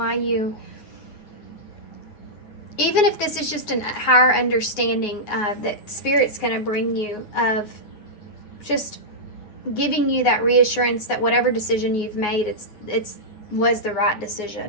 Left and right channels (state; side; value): late; right; 9.5 ms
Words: you, even if this is just a higher understanding that Spirit's going to bring you, of just giving you that reassurance that whatever decision you've made, it's was the right